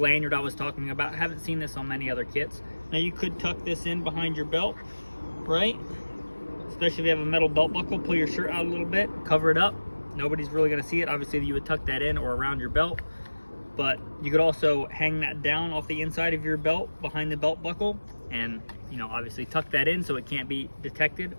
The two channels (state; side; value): inverted; both; correlation -1.00